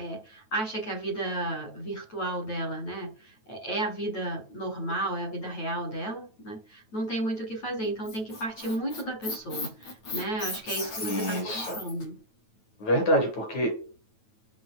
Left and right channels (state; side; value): late; right; 9.2 ms